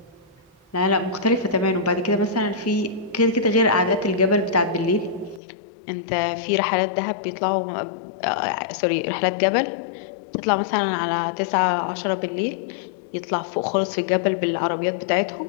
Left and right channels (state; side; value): drops out; right; at 5.4 s